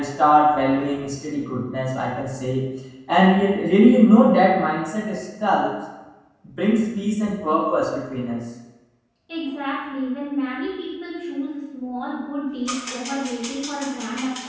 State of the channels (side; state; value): both; identical; correlation 1.00